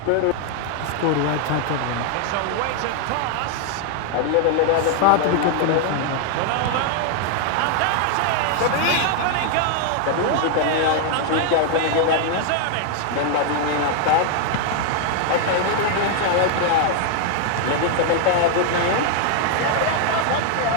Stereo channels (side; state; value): both; different; correlation 0.00